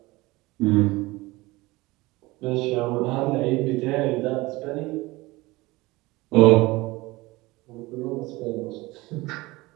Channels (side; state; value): left; quieter; 21.3 dB